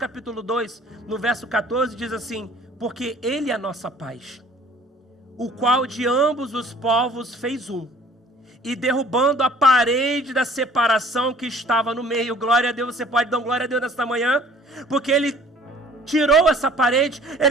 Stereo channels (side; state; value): both; normal; correlation 0.52